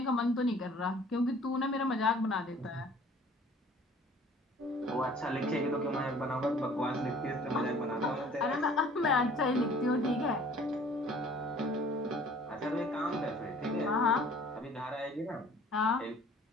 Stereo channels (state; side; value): normal; both; correlation 0.52